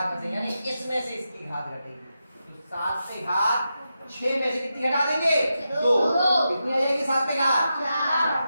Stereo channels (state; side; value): inverted; both; correlation -0.88